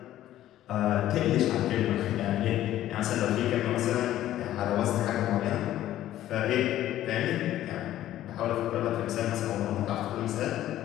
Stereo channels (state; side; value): quieter; right; 13.2 dB